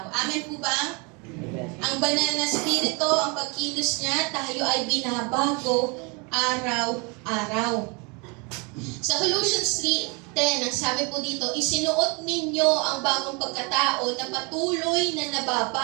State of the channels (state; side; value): quieter; left; 31.0 dB